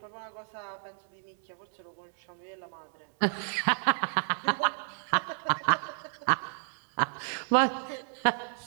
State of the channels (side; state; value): left; silent; 57 dB below the other